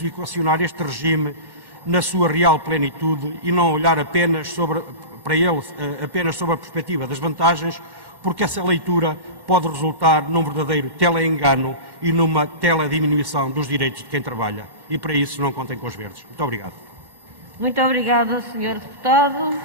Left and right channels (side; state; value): left; late; 1.1 ms